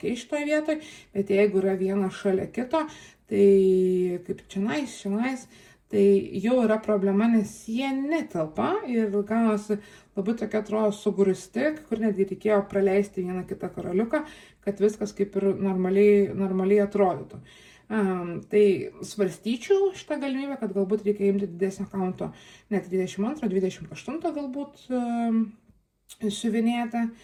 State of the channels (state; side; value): identical; both; correlation 1.00